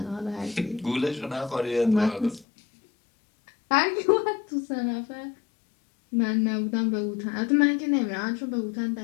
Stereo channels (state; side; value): drops out; right; at 2.5 s